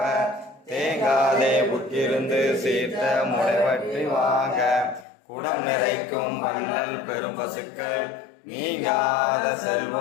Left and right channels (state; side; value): drops out; right; at 5.1 s